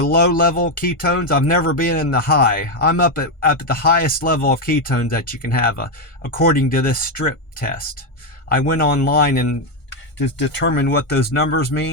low level ketones. I've never been in the high. I'm up at the highest level of ketones that you can have, according to this strip test. I went online and to determine what those numbers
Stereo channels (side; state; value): right; late; 1.5 ms